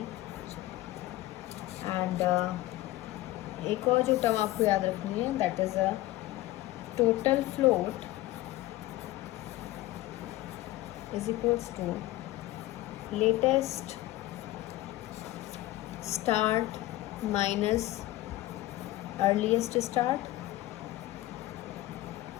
And एक और जो टर्म आपको याद रखनी है, that is a total float is equals to latest start minus earliest start,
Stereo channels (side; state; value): right; quieter; 17.0 dB